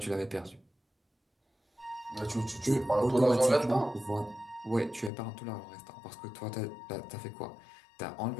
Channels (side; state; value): right; drops out; at 5.1 s